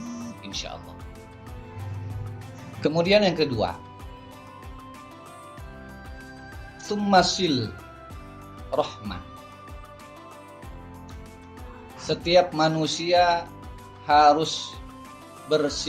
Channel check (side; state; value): both; identical; correlation 1.00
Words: insya Allah. Kemudian yang kedua, summasil rahmah. Setiap manusia harus